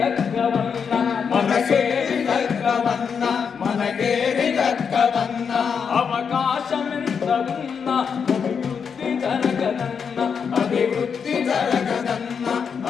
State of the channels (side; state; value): right; quieter; 6.5 dB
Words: దక్కవన్న, మనకేవి దక్కవన్న, మనకేవి దక్కవన్న. అవకాశం ఎంత ఉన్నా అభివృద్ధి జరగదన్న, అభివృద్ధి జరగదన్న,